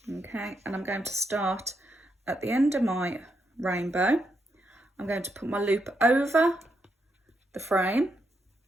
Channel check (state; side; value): normal; both; correlation 0.81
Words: Okay, and I'm going to start at the end of my rainbow. I'm going to put my loop over the frame.